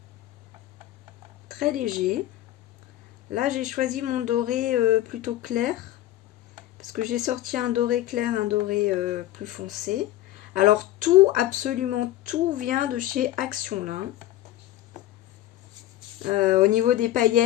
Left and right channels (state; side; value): quieter; right; 14.0 dB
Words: Très léger. Là, j'ai choisi mon doré plutôt clair. Parce que j'ai sorti un doré clair, un doré plus foncé. Alors, tout, absolument tout vient de chez Action, là. Au niveau des